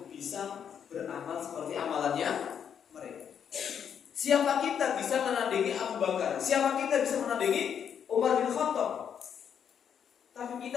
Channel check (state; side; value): quieter; right; 8.1 dB